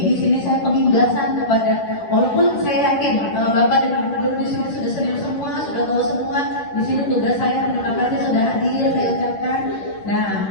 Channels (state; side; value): late; right; 10 ms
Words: di sini saya pengiblasan kepada, walaupun saya yakin bapak dan ibu guru di sini sudah senior semua, sudah tahu semua. Di sini tugas saya, terima kasih sudah hadir, saya ucapkan. Nah,